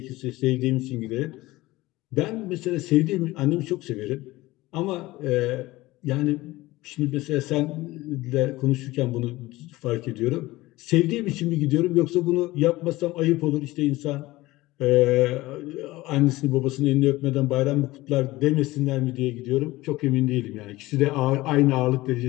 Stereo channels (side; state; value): right; quieter; 19.0 dB